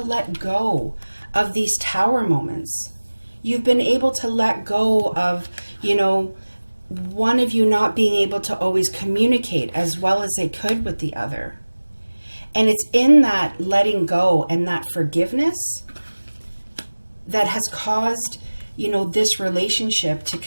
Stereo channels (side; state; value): both; inverted; correlation -1.00